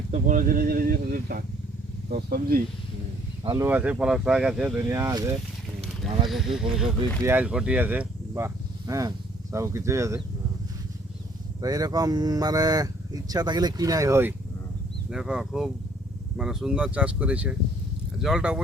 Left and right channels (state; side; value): normal; both; correlation 0.61